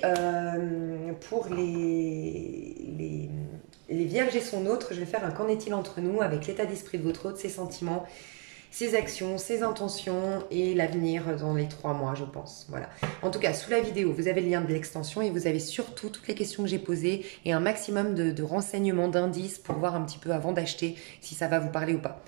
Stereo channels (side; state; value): left; quieter; 37.5 dB